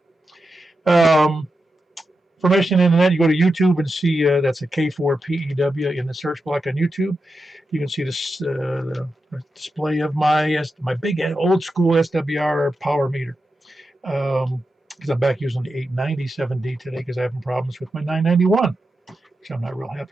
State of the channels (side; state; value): both; normal; correlation 0.89